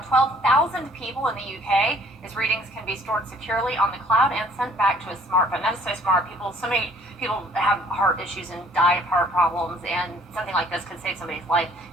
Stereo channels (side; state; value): both; normal; correlation 0.58